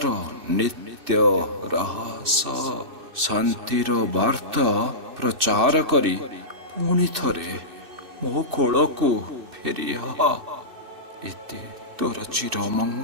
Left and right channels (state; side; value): late; left; 2.6 ms